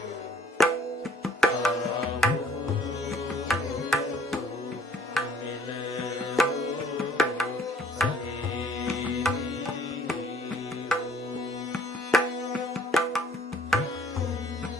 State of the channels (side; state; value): both; normal; correlation 0.58